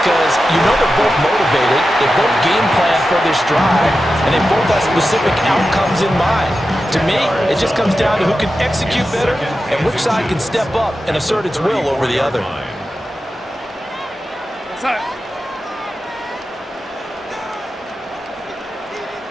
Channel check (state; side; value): normal; both; correlation 0.92